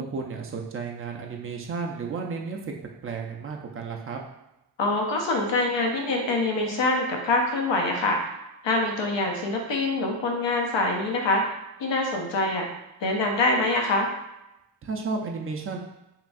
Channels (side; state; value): both; normal; correlation 0.03